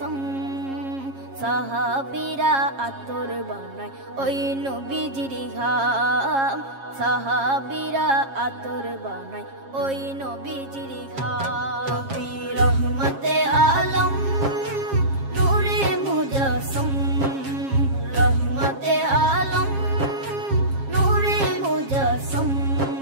সাহাবীরা আতর বানায় ওই নবীজির ঘাম, সাহাবীরা আতর বানায় ওই নবীজির ঘাম। নবী রহমতে আলম নূরে মুজস্সম, রহমতে আলম নূরে মুজস্সম।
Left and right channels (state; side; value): late; left; 7.4 ms